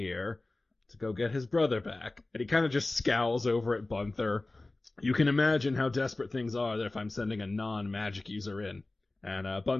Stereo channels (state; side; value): quieter; right; 3.0 dB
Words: to go get his brother back. And he kind of just scowls over at Gunther. You can imagine how desperate things are if I'm sending a non-magic user in. And